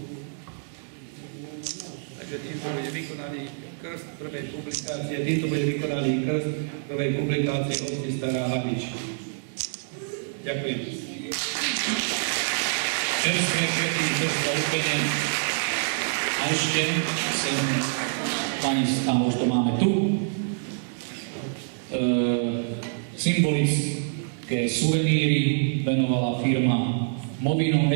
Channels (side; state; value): left; silent; digital silence